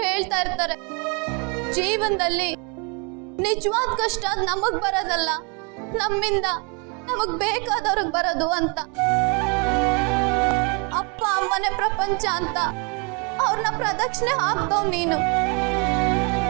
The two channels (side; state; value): left; quieter; 33.7 dB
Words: ಹೇಳ್ತಾ ಇರ್ತಾರೆ, ಜೀವನದಲ್ಲಿ ನಿಜವಾದ ಕಷ್ಟ ನಮಗ್ ಬರೋದಲ್ಲ, ನಮ್ಮಿಂದ ನಮಗ್ ಬೇಕಾದವ್ರಿಗೆ ಬರೋದು ಅಂತ. ಅಪ್ಪ ಅಮ್ಮನೇ ಪ್ರಪಂಚ ಅಂತ ಅವ್ರನ್ನ ಪ್ರದಕ್ಷಿಣೆ ಹಾಕ್ತವ್ ನೀನು.